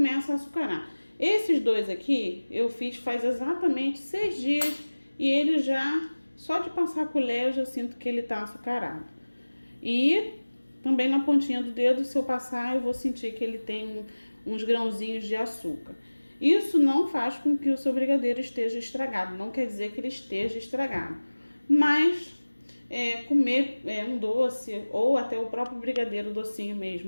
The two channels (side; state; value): both; inverted; correlation -1.00